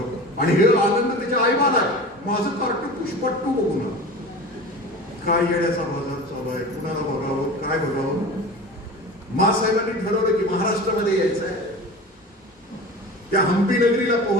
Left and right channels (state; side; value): normal; both; correlation 0.34